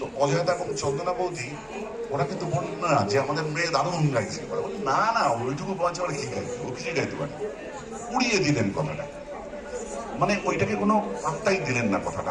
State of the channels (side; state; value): both; identical; correlation 1.00